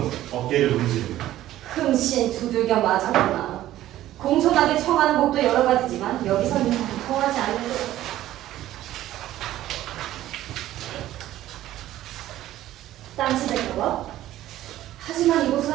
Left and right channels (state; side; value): quieter; left; 14.0 dB